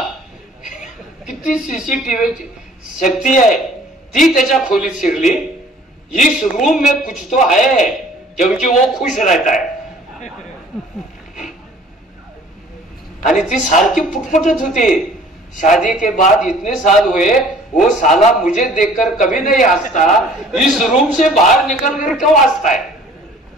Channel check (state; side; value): normal; both; correlation 0.52